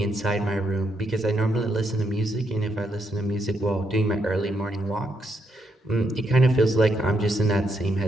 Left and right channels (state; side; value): normal; both; correlation 0.78